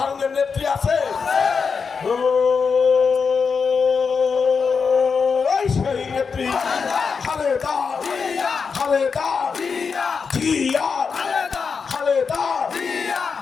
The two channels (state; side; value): quieter; right; 5.5 dB